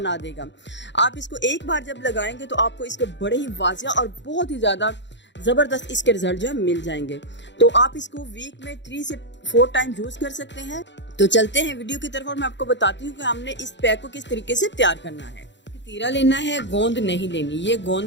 देगा। आप इसको एक बार जब लगाएंगे तो आपको इसके बड़े ही वाजिया और बहुत ही ज़्यादा ज़बरदस्त इसके रिजल्ट जो है मिल जाएंगे। तो आप इसको वीक में 3 से 4 टाइम यूज़ कर सकते हैं। तो चलते हैं वीडियो की तरफ और मैं आपको बताती हूँ कि हमने इस पैक को किस तरीके से तैयार करना है। तीरा लेना है, गोंद नहीं लेनी। ये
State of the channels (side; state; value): right; late; 0.52 ms